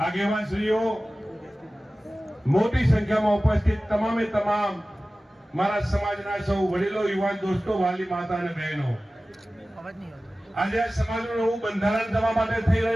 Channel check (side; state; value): both; normal; correlation 0.97